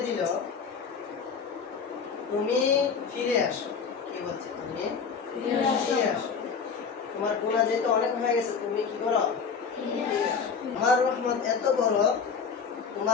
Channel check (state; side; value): quieter; right; 6.0 dB